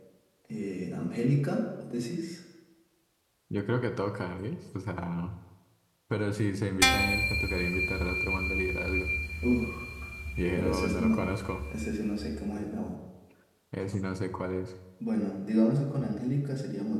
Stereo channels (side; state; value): both; identical; correlation 1.00